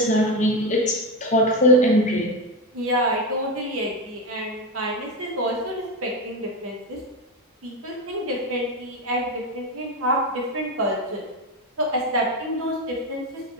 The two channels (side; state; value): both; normal; correlation 0.15